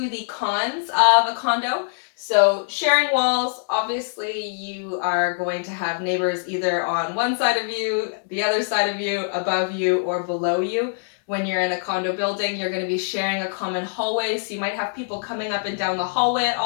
the cons of a condo. So sharing walls, obviously you are going to have neighbors either on one side of you, the other side of you, above you, or below you. When you're in a condo building, you're going to be sharing a common hallway, so you might have people coming up and down the hallway at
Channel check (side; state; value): right; silent; digital silence